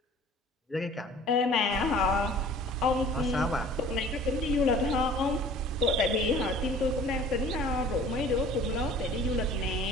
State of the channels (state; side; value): normal; both; correlation 0.48